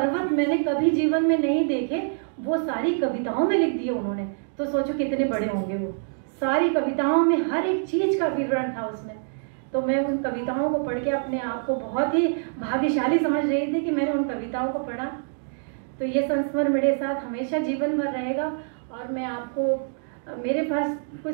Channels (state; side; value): silent; left; digital silence